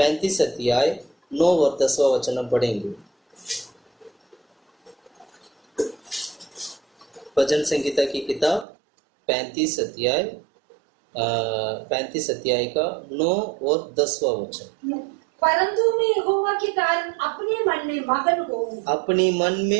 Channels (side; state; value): left; drops out; at 8.7 s